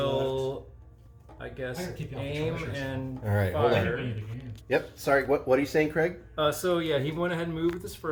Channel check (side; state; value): both; identical; correlation 1.00